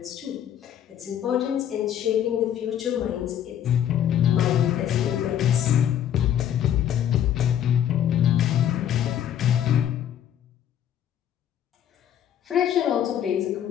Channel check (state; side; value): quieter; right; 10.2 dB